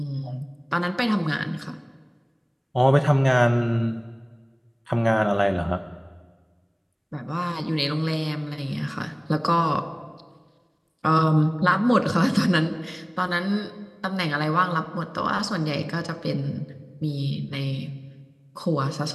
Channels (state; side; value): identical; both; correlation 1.00